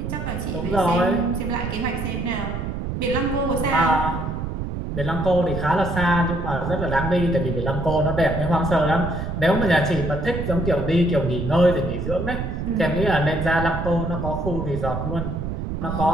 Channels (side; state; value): right; noise; rumble, 4 dB below the sound